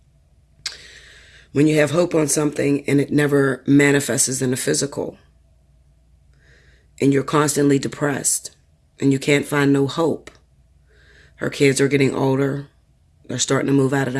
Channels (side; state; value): both; identical; correlation 1.00